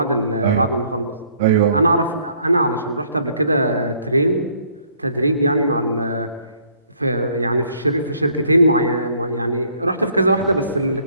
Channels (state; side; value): inverted; both; correlation -0.62